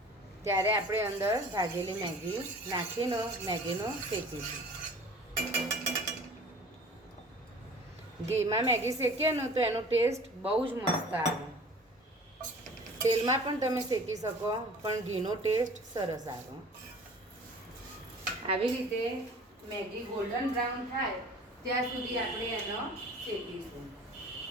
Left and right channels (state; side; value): normal; both; correlation 0.45